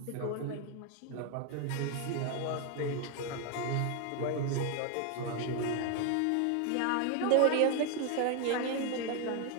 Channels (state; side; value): different; both; correlation 0.01